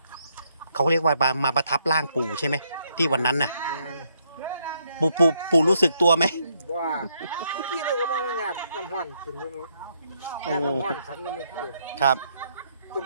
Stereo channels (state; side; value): inverted; both; correlation -0.74